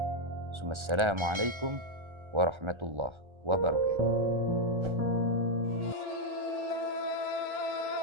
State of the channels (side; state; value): left; late; 1.3 ms